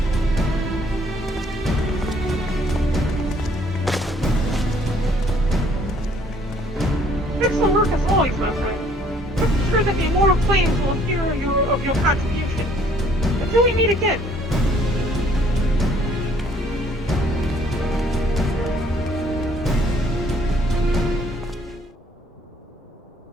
Excellent work as always, my friend. I'm sure that the immortal flames will hear of your contribution. Until we meet again.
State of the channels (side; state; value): both; normal; correlation 0.61